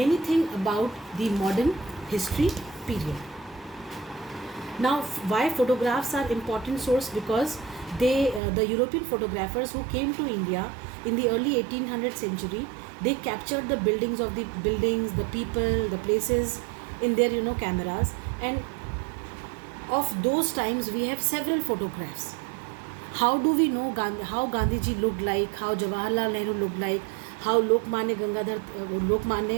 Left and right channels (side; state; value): left; drops out; at 8.4 s